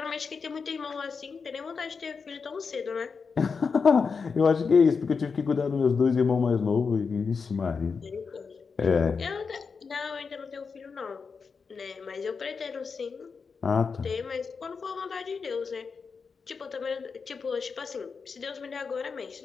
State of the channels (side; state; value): right; quieter; 5.3 dB